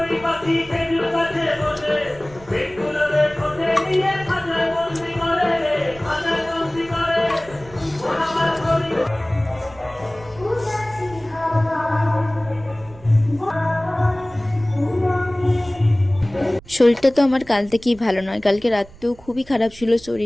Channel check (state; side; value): noise; right; rumble, 21 dB below the sound